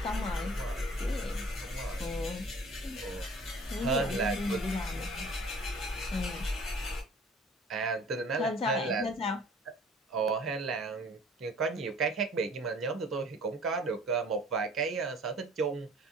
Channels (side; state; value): both; normal; correlation 0.50